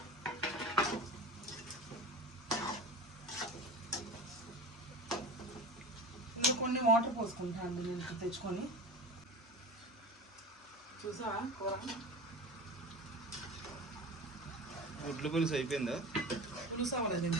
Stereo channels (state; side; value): normal; both; correlation 0.32